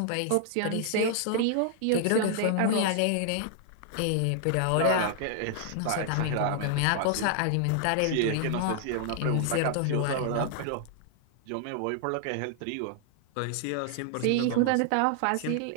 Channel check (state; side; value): different; both; correlation -0.01